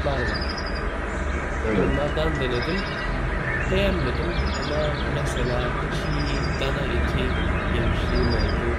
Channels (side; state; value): both; identical; correlation 1.00